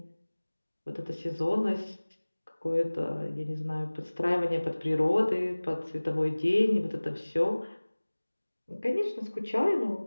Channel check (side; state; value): both; inverted; correlation -1.00